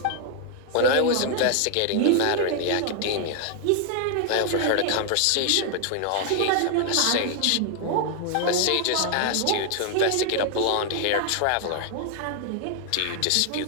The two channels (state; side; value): different; both; correlation 0.00